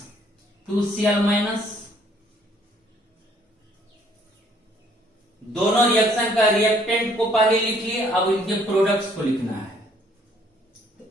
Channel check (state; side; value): normal; both; correlation 0.63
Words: 2Cl-। दोनों रिएक्शन का रिएक्टेंट को पहले लिख लिए, अब इनके प्रोडक्ट्स को लिखना है। तो